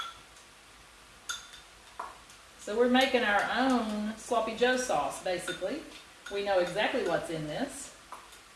So we're making our own sloppy Joe sauce, basically. We know exactly what's in this.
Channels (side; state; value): both; identical; correlation 1.00